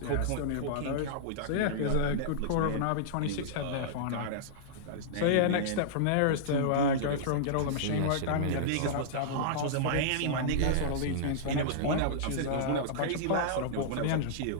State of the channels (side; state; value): both; different; correlation -0.02